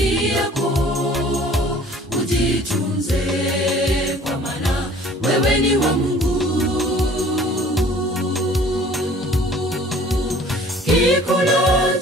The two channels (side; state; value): both; normal; correlation 0.51